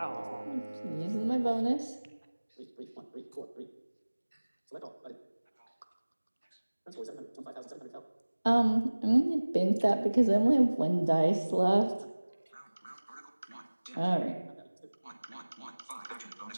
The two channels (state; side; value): inverted; both; correlation -1.00